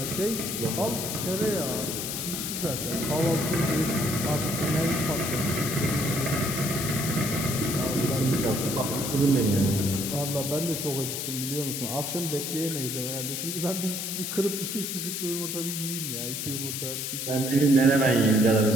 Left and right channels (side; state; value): left; noise; hiss, 4 dB below the sound